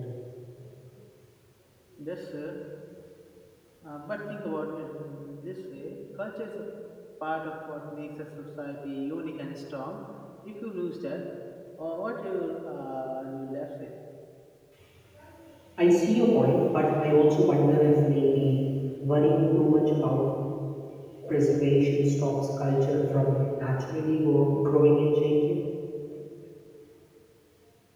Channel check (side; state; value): both; identical; correlation 1.00